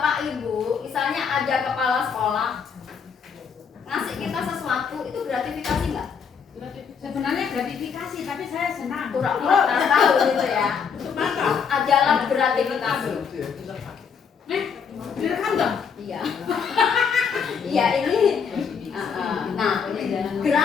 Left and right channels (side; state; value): right; quieter; 6.5 dB